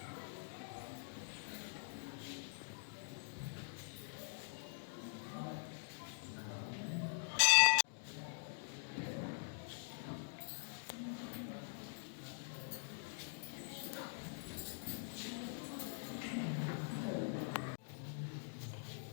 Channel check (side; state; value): right; silent; digital silence